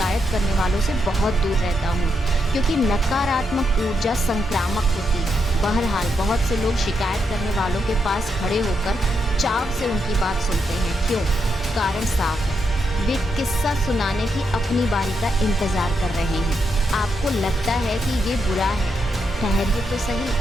करने वालों से बहुत दूर रहता हूँ, क्योंकि नकारात्मक ऊर्जा संक्रामक होती है। बहरहाल बहुत से लोग शिकायत करने वालों के पास खड़े होकर चाव से उनकी बात सुनते हैं। क्यों? कारण साफ है, वे किस्सा सुनाने की अपनी बारी का इंतज़ार कर रहे हैं। आपको लगता है कि ये बुरा है, ठहरिए तो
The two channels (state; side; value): normal; both; correlation 0.81